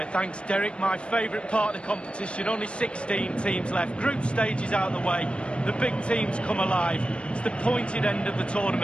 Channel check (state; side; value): late; right; 0.057 ms